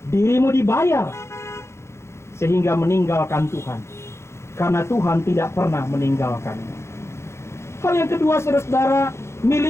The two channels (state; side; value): late; right; 0.13 ms